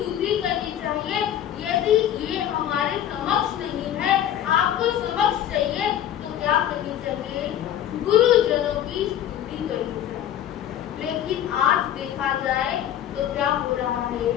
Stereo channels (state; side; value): quieter; right; 11.0 dB